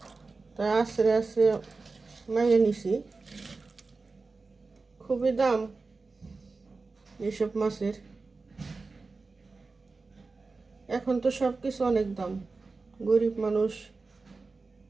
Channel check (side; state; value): left; quieter; 3.9 dB